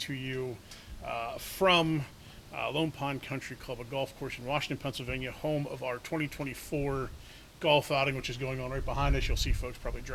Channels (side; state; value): both; identical; correlation 1.00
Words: you from Lone Pond Country Club, a golf course in Washington, Pennsylvania, home of our 2024 golf outing, which is going on right behind us. You'll see folks probably